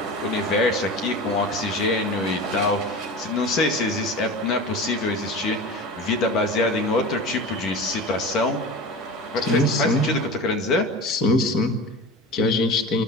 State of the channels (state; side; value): normal; both; correlation 0.32